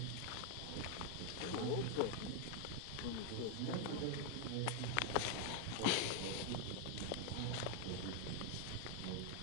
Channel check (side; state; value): both; different; correlation 0.01